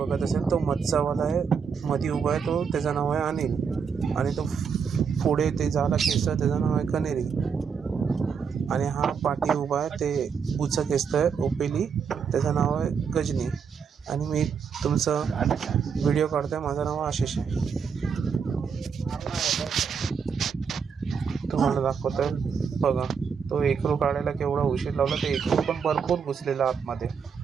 असेल, तो मच्छावाला आहे, मध्ये उभा आहे, तो त्याचं नाव आहे अनिल. आणि तो पुढे ते झाला खेचतोय, त्याचं नाव आहे कनेरी. आणि हा पाठी उभा आहे, ते उचं खेचतोय ओपेली, त्याचं नाव आहे गजनी. आणि मी तुमचं व्हिडिओ काढतोय, माझं नाव आशिष आहे. तुम्हाला दाखवतोय बघा, तो एकरू काढायला केवढा उशीर लावला. ते एकरू पण भरपूर घुसलेला आतमध्ये,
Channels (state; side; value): quieter; left; 6.4 dB